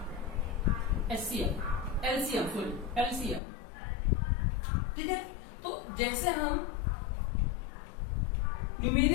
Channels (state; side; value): drops out; right; at 3.4 s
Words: LCM. ठीक है, तो जैसे हम